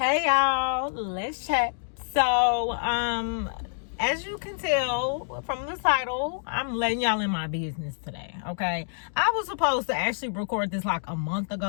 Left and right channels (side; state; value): right; silent; digital silence